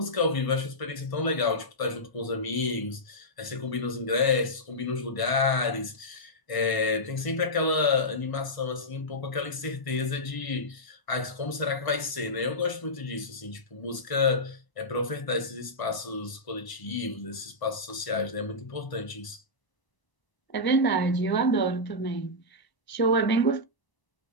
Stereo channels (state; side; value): late; right; 1.0 ms